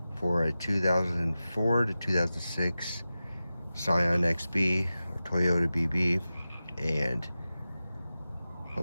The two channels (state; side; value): inverted; both; correlation -0.94